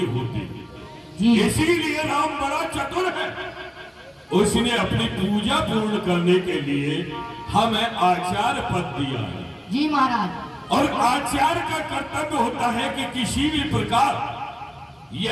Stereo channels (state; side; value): identical; both; correlation 1.00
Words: होती। जी इसीलिए राम बड़ा चतुर है, उसने अपनी पूजा पूर्ण करने के लिए हमें आचार्य पद दिया है। जी महाराज। और आचार्य का कर्तव्य होता है कि किसी भी प्रकार